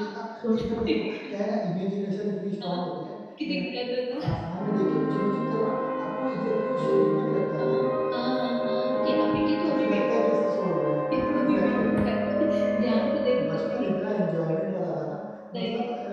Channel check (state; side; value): identical; both; correlation 1.00